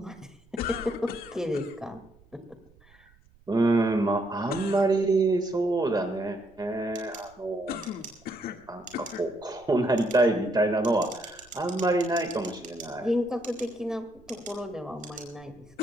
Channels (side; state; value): right; noise; rumble, 29 dB below the sound